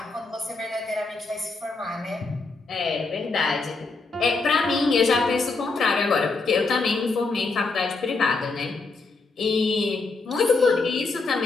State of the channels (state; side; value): quieter; right; 3.9 dB